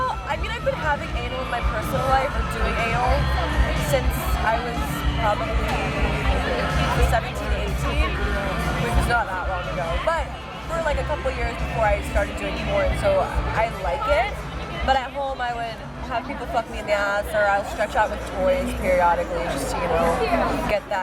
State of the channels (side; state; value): both; identical; correlation 1.00